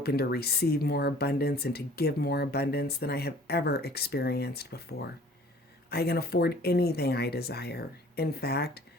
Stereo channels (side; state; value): both; normal; correlation 0.51